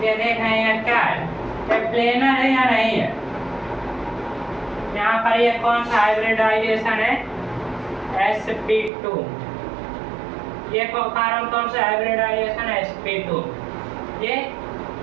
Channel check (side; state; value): left; drops out; at 8.9 s